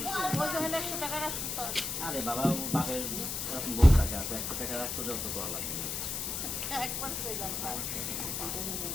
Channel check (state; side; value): noise; left; hiss, 3 dB below the sound